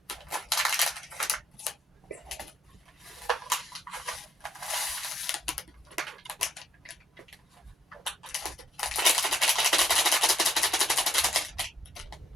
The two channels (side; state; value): both; normal; correlation 0.73